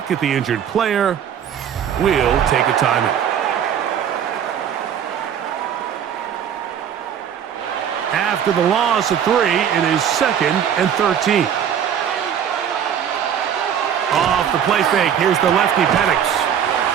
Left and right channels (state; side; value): quieter; left; 8.7 dB